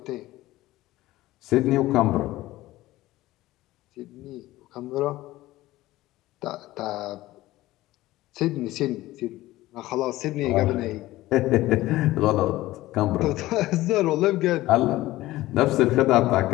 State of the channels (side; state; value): right; quieter; 17.0 dB